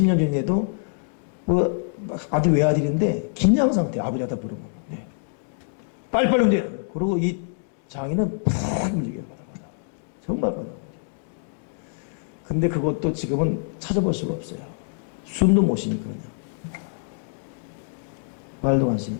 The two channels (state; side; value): silent; right; digital silence